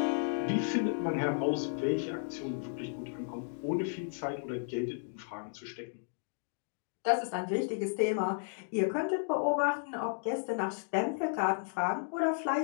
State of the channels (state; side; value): silent; right; digital silence